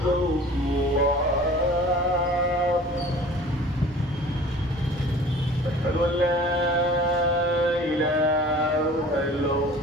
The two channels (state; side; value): normal; both; correlation 0.45